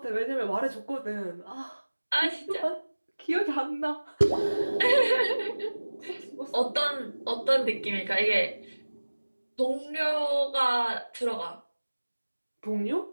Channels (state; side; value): inverted; both; correlation -1.00